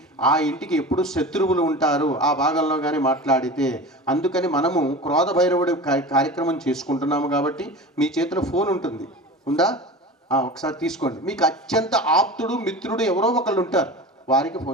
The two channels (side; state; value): both; normal; correlation 0.33